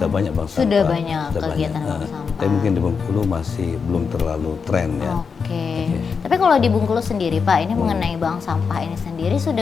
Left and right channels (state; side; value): quieter; right; 5.7 dB